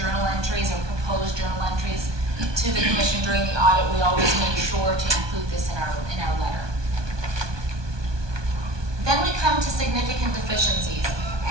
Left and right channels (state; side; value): late; left; 1.2 ms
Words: entries or propose journal entries to the commission during the audit, we always make sure to include this in our letter. Then we come to significant deficiencies.